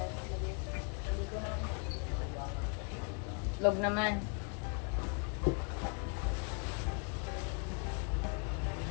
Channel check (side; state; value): right; quieter; 36.3 dB